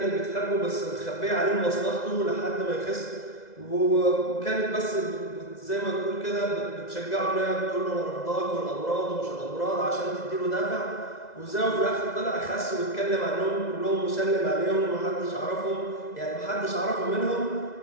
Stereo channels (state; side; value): late; right; 2.0 ms